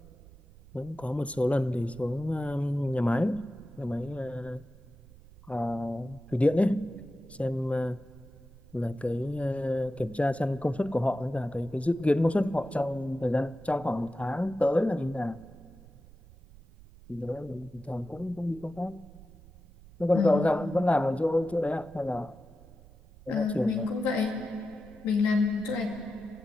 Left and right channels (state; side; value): noise; right; rumble, 22 dB below the sound